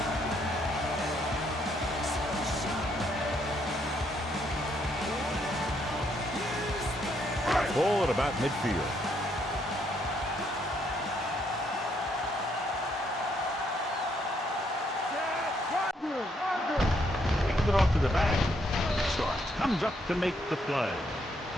Ball at about midfield. Hands it off to the back. Starks comes up to make the play.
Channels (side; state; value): both; normal; correlation 0.73